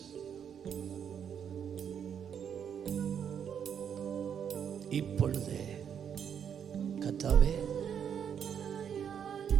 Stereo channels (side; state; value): left; quieter; 8.1 dB